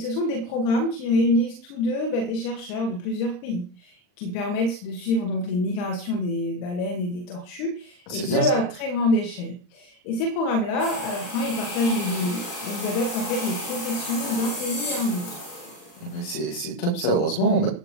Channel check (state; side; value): late; right; 39 ms